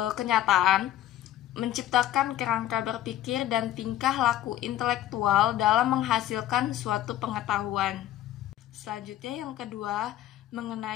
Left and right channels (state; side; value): quieter; right; 12.9 dB